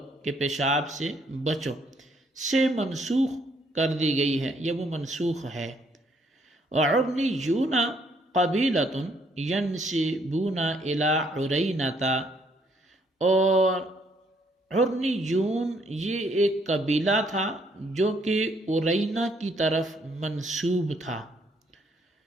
کے پیشاب سے بچو سے منسوخ کر دی گئی ہے، یہ وہ منسوخ ہے۔ وعرنیون قبیلۃ ینسبون الی عرینۃ، اور عرنیون یہ ایک قبیلہ تھا جو کہ عرینہ کی طرف منسوب تھا۔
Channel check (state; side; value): normal; both; correlation 0.68